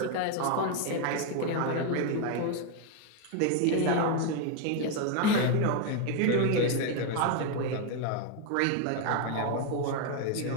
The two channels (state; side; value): different; both; correlation 0.01